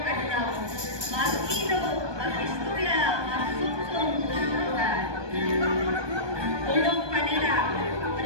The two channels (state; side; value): late; left; 1.2 ms